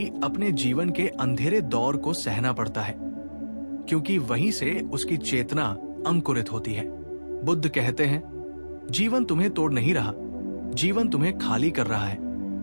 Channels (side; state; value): both; inverted; correlation -1.00